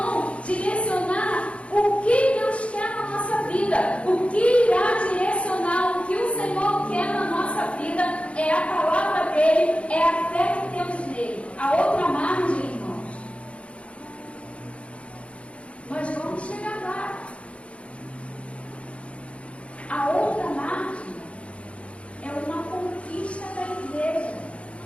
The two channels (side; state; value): right; late; 0.061 ms